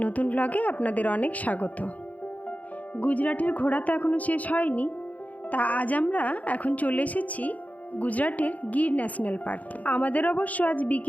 নতুন ব্লগে আপনাদের অনেক স্বাগত। গুজরাটের ঘোরা তো এখনও শেষ হয়নি, তা আজ আমরা এখন চলে এসেছি গুজরাটের গির ন্যাশনাল পার্কে। আমাদের অবশ্য আজ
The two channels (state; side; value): late; right; 0.074 ms